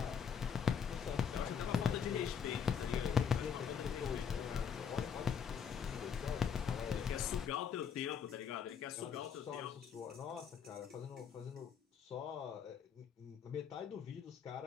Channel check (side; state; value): right; quieter; 7.2 dB